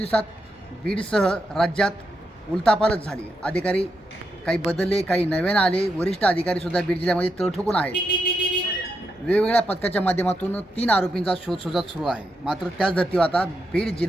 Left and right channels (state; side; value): normal; both; correlation 0.84